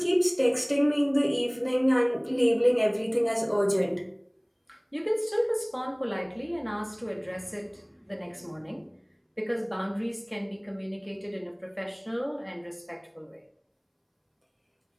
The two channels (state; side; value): identical; both; correlation 1.00